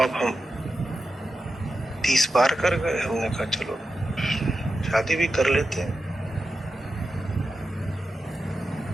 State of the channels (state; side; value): normal; both; correlation 0.91